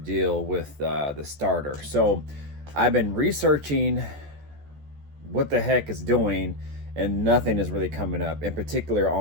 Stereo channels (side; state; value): left; late; 14 ms